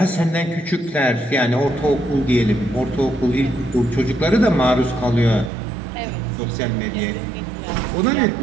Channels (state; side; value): drops out; left; at 5.5 s